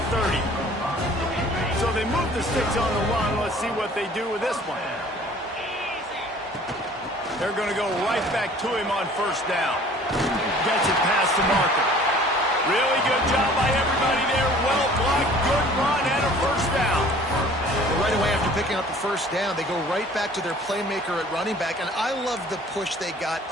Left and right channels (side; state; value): both; normal; correlation 0.50